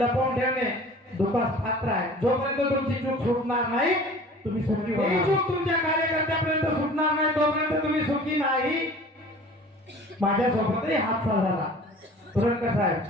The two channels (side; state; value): both; normal; correlation 0.45